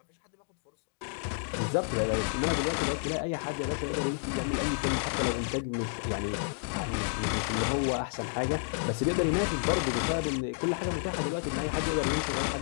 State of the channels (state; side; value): silent; right; digital silence